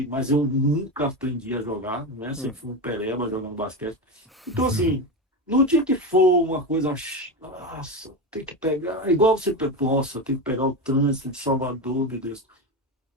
mas eu nunca aprendi a jogar, né? Sempre fui um pereba jogando basquete. Então, assim, no dia que for uma coisa, nossa, tem que pegar, igual você, nossa, tem que pegar o trânsito de Salvador, meu Deus,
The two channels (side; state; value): both; normal; correlation 0.17